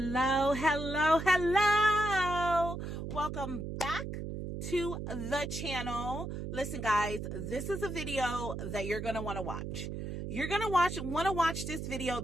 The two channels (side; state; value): right; noise; hum, 6 dB below the sound